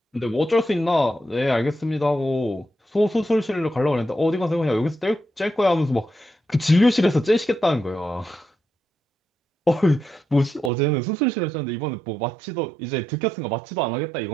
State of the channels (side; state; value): left; drops out; at 10.7 s